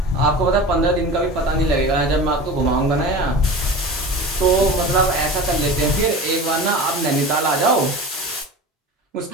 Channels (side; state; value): both; normal; correlation 0.33